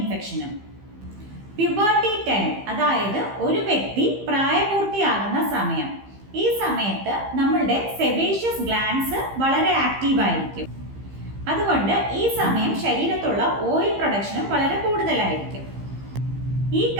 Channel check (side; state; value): left; late; 15 ms